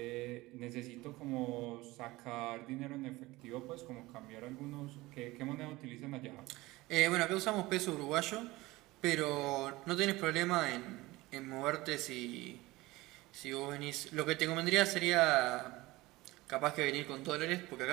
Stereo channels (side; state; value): left; quieter; 20.0 dB